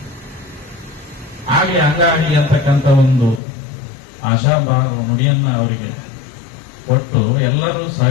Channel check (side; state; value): right; drops out; at 3.4 s